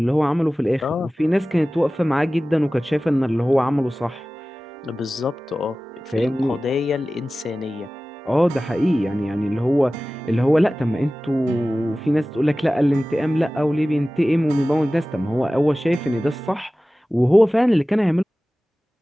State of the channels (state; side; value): normal; both; correlation 0.97